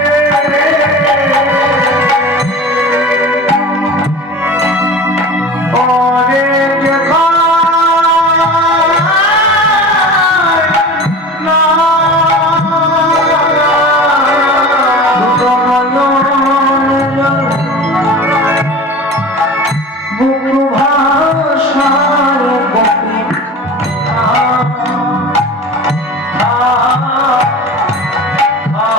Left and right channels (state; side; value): normal; both; correlation 0.36